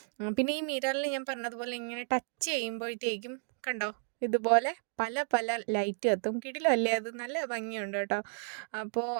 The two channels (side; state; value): left; silent; 56 dB below the other